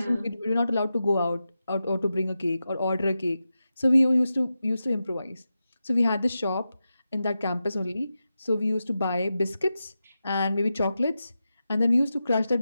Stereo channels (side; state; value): both; inverted; correlation -0.91